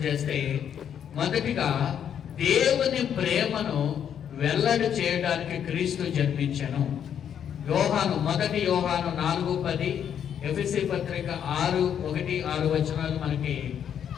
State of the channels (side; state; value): right; quieter; 8.8 dB